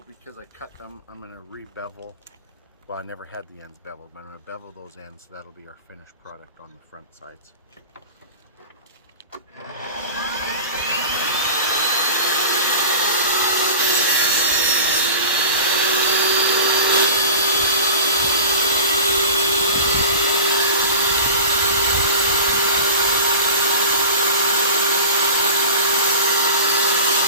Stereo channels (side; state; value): both; inverted; correlation -0.35